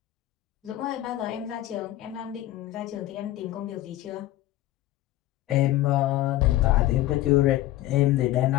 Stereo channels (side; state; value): right; quieter; 15.4 dB